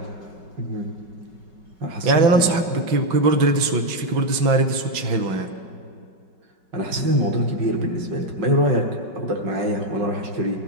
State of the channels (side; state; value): left; late; 5.3 ms